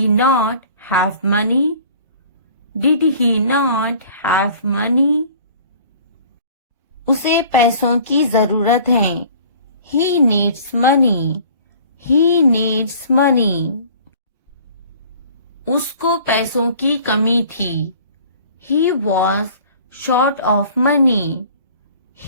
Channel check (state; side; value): inverted; both; correlation -0.49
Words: not have money? Did he not have money? उसे पैसों की जरूरत है। He needs money. He needs money. उसको पैसों की कमी थी। He was short of money.